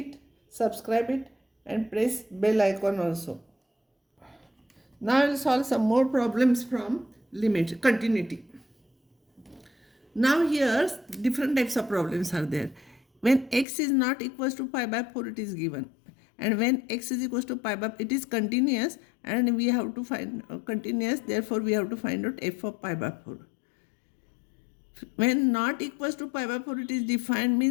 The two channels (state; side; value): drops out; right; at 13.7 s